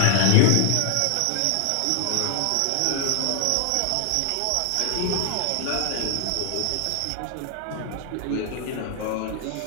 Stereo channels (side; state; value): both; different; correlation 0.00